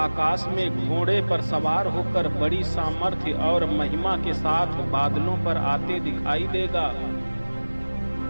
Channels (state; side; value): inverted; both; correlation -1.00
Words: में घोड़े पर सवार होकर बड़ी सामर्थ्य और महिमा के साथ बादलों पर आते दिखाई देगा।